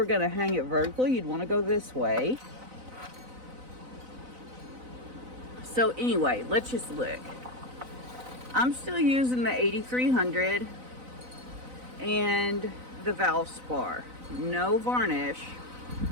going to hang it vertically, you'd want to go this way. So anyway, let's just look. I'm still using the 8300 and the Valspar. No varnish,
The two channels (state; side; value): late; left; 4.0 ms